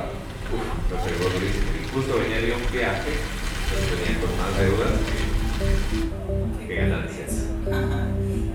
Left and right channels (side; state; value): both; identical; correlation 1.00